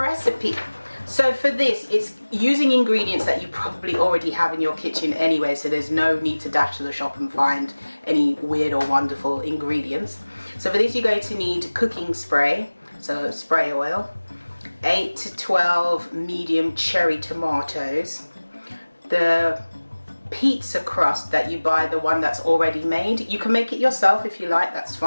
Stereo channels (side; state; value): both; inverted; correlation -1.00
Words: So for this, it's using ingredients that you probably already have in your kitchen anyway, so there's no need to dash to the shop and find any weird or wonderful ingredients. So for this, you're going to need cooking spray, so spray oil, 8 to 12 medium cherry tomatoes, the pizza crust that you buy, the one that's already made. You can make it yourself if you like, that's